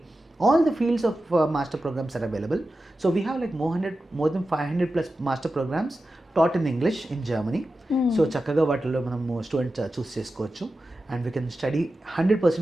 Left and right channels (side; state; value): both; normal; correlation 0.92